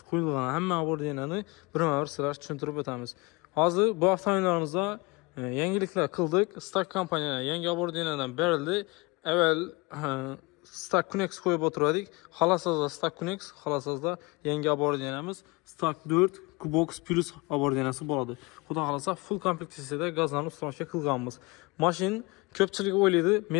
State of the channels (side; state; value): right; quieter; 25.3 dB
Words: Qo'yilgan hamma ordinani birma-bir sizlarga tushuntirib o'tamiz. Hozir bu avtomobillarimizda yangiliklar qildik. Stark kompaniya yangi ordinadan berildi. Avval Stark Connect qo'yib o'tirdik. Xolasizda Stark Connect, xolasizda yangi abordinamiz Stark 4 Kubox Plus abordinasi bo'ladi. Xudo xolasa full kompleksiyada gazlarni ustamaga qilganmiz. Mashin ko'pchilik o'ylaydi,